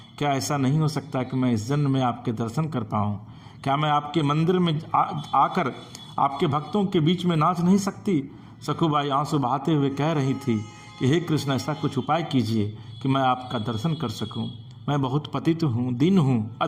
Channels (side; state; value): both; identical; correlation 1.00